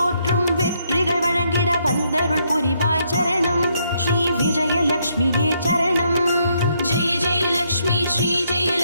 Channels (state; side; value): inverted; both; correlation -0.74